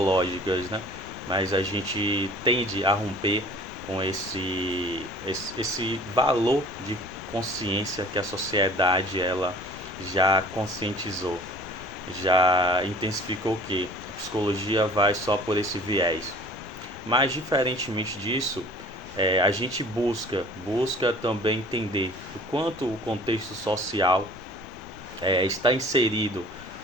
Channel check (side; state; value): both; normal; correlation 0.47